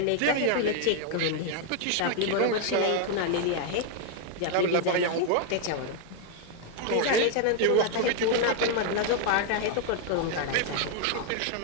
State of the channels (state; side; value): different; both; correlation 0.00